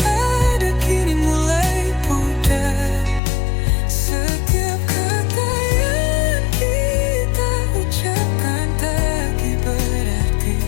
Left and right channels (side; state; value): right; drops out; at 3.2 s